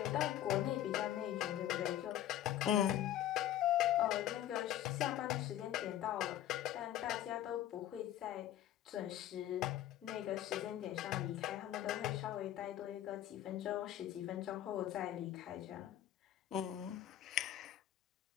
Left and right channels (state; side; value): quieter; right; 12.3 dB